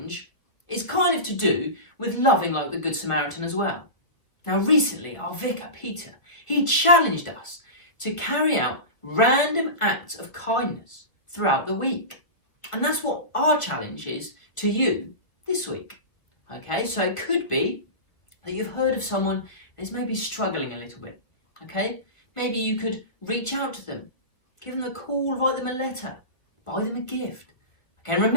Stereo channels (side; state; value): right; late; 1.6 ms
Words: is kind of to do with loving like the Good Samaritan as well. Now, recently, our vicar, Peter, he challenged us to carry out random acts of kindness throughout the week. And that's what our challenge is to you this week. Okay, so it could be that you've heard of someone that's maybe struggling a little bit. Okay, maybe you could reach out to them, give them a call, write them a letter, buy them a gift. Okay, and